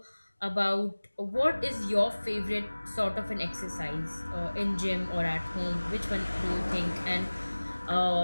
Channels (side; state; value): both; inverted; correlation -1.00